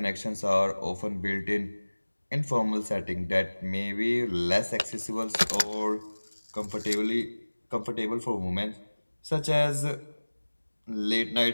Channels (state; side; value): inverted; both; correlation -1.00